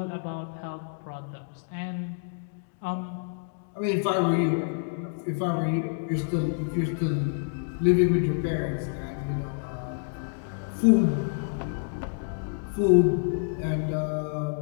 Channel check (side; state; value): right; silent; digital silence